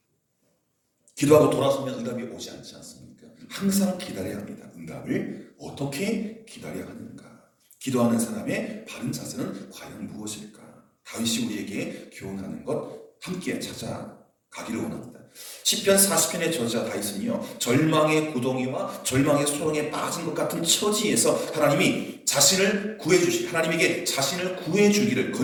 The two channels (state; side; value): identical; both; correlation 1.00